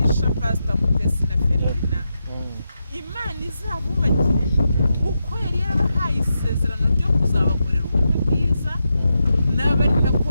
Pastor Mutesi na Ferina Imana izabubakire uko yari yarabahaye isezerano ryo kuzabakorera ubukwe bwiza n'abari nako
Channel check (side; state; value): both; inverted; correlation -0.86